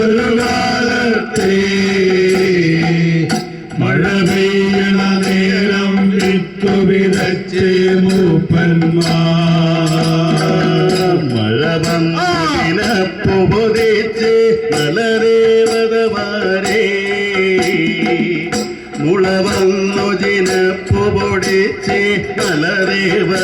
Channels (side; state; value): both; identical; correlation 1.00